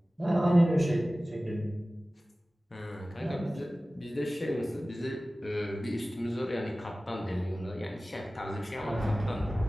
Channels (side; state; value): both; normal; correlation 0.97